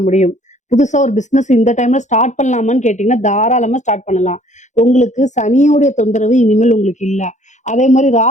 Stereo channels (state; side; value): late; right; 0.35 ms